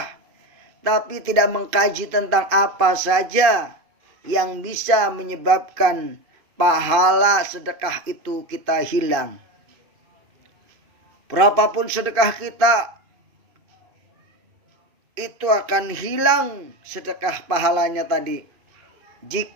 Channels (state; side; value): late; left; 2.5 ms